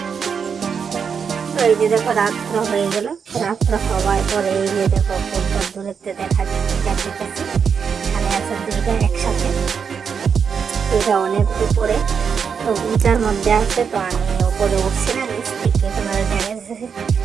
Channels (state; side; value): quieter; left; 6.5 dB